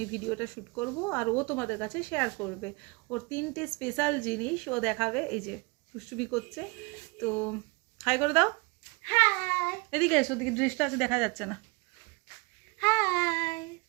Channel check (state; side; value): quieter; left; 27.3 dB